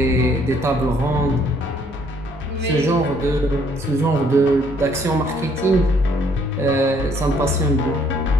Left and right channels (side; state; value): both; normal; correlation 0.64